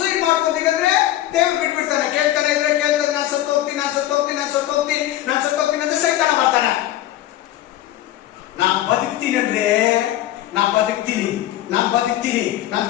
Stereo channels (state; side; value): quieter; right; 13.9 dB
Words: ಮಾಡ್ಕೊಂತೀನಂದ್ರೆ ದೇವ್ರು ಬಿಟ್ಬಿಡ್ತಾನೆ. ಕೇಳ್ತಾನೆ ನಾನು ಸತ್ತೋಗ್ತೀನಿ ಅಂತ ಸೈತಾನ ಬರ್ತಾನೆ. ನಾನು ಬದುಕ್ತೀನಿ ಅಂದ್ರೆ ನಾನು ಬದುಕ್ತೀನಿ, ನಾನು